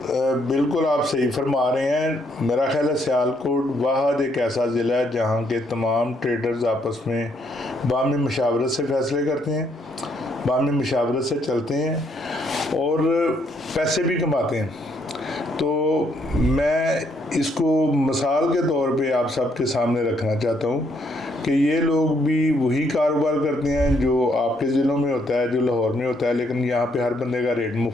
बिल्कुल आप सही फरमा रहे हैं। मेरा ख्याल है सियालकोट वाहद एक ऐसा ज़िला है जहाँ के तमाम ट्रेडर्स आपस में बामी मशावरत से फ़ैसले करते हैं, बामी मशावरत से चलते हैं और पैसे भी कमाते हैं। तो मैं इसको मिसाल के तौर पे आप सबके सामने रखना चाहता हूँ कि ये लोग भी वही कारोबार करते हैं जो आपके ज़िलों में होता है, जो लाहौर में होता है, लेकिन यहाँ पे हर बंदे का रेट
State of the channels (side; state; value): both; normal; correlation 0.71